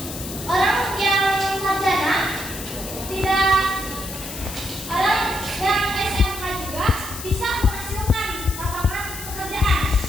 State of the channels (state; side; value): noise; left; hiss, 10 dB below the sound